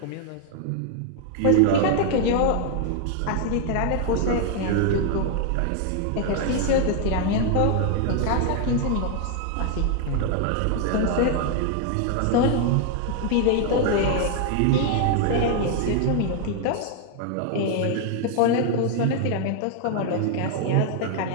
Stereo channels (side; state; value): both; different; correlation 0.00